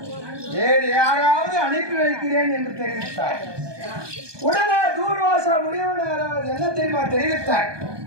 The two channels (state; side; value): late; left; 1.2 ms